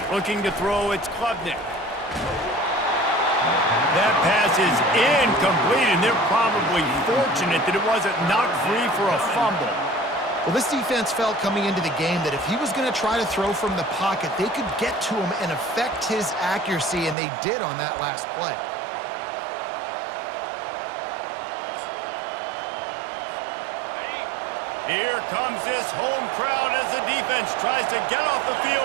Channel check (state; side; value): drops out; left; at 17.2 s